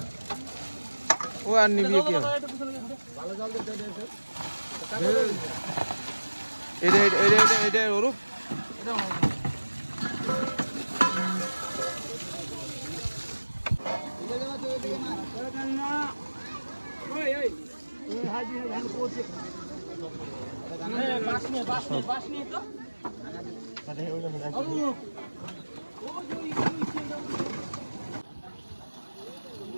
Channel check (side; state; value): both; inverted; correlation -1.00